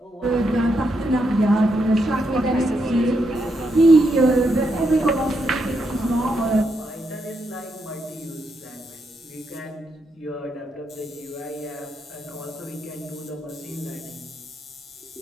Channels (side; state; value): both; normal; correlation 0.80